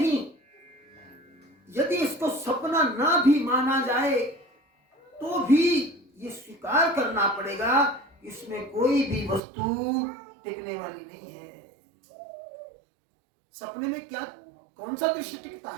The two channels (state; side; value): drops out; left; at 9.4 s